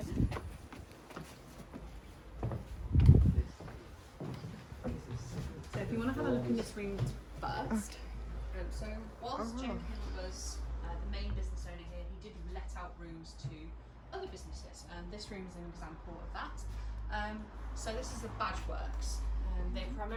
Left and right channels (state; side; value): identical; both; correlation 1.00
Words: So if you want to have a look in this room first. So whilst Jenkins was the main business owner here, he did let out rooms to other businesses, and this room is an example of that. So this is the badge works. They